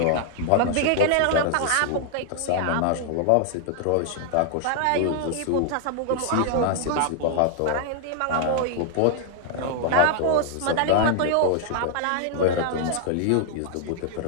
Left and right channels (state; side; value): different; both; correlation -0.01